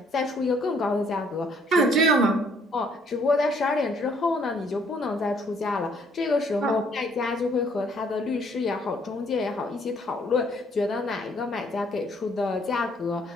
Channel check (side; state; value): both; normal; correlation 0.64